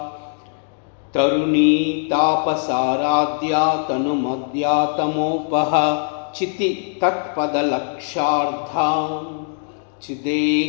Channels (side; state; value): right; silent; digital silence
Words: तरुणी तापसाराध्या तनुमद्या तमोपह चिति तत्पदलक्षार्धा